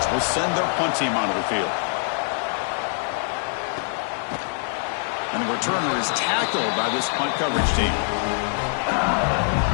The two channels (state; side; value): silent; right; 63 dB below the other